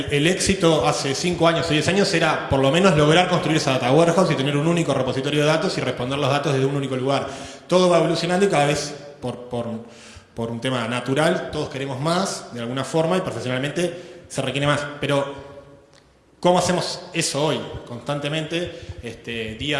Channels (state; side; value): identical; both; correlation 1.00